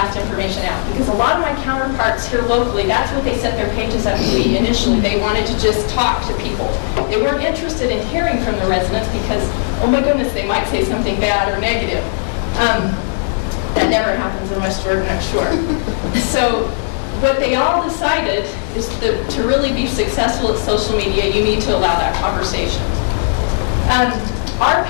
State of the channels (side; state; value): right; silent; digital silence